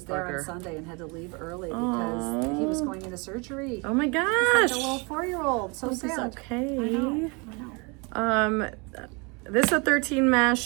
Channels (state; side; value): quieter; left; 30.4 dB